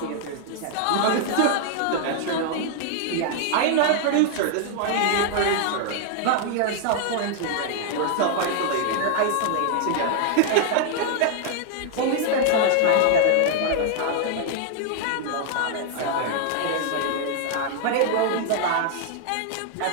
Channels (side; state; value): both; different; correlation 0.00